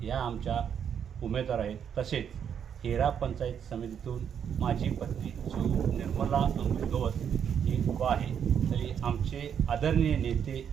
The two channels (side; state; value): left; quieter; 8.2 dB